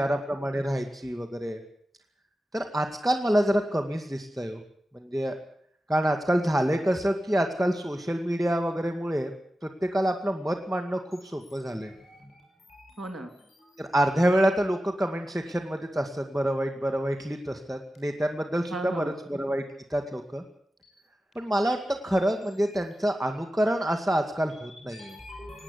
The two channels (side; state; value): both; normal; correlation 0.93